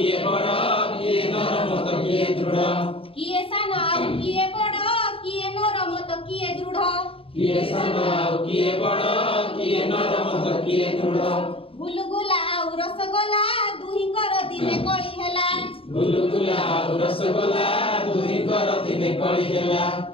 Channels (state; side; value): late; right; 0.27 ms